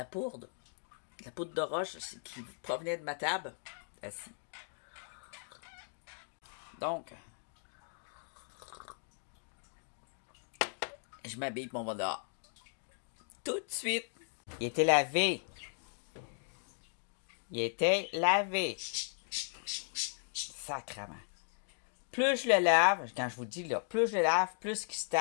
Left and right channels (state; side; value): silent; right; digital silence